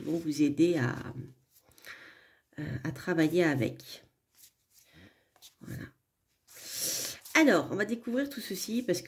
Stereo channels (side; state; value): both; identical; correlation 1.00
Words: vont vous aider à travailler avec. Voilà. Alors, on va découvrir tout ceci parce